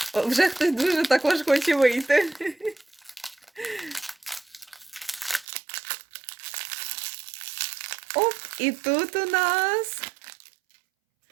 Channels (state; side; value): drops out; left; at 5.5 s